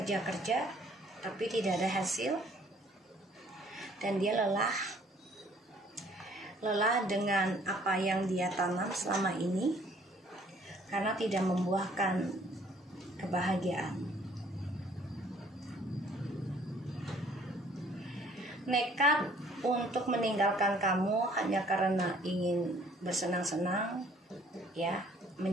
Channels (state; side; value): normal; both; correlation 0.59